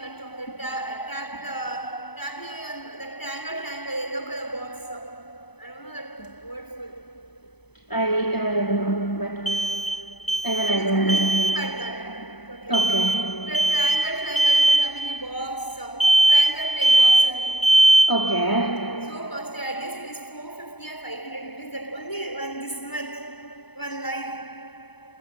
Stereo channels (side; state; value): right; late; 0.98 ms